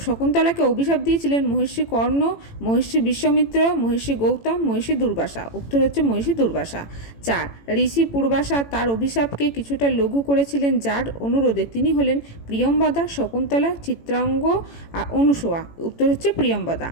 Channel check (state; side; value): late; right; 18 ms